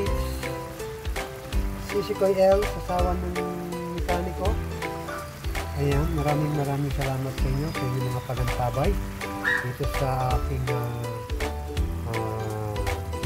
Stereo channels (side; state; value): both; identical; correlation 1.00